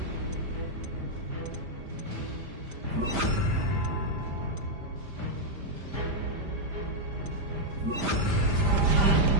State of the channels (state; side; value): late; left; 5.0 ms